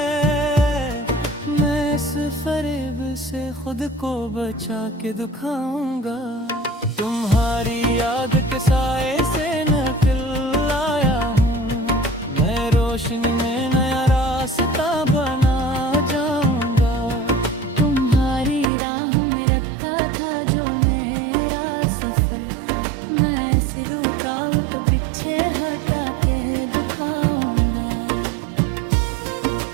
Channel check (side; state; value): left; drops out; at 18.7 s